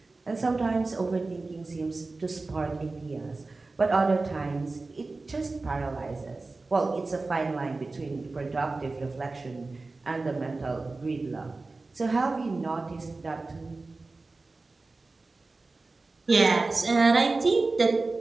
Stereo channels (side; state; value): left; quieter; 3.5 dB